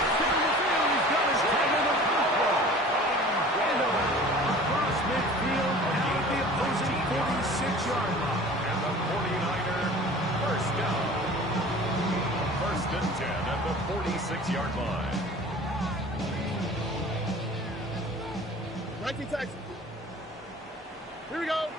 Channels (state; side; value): normal; both; correlation 0.43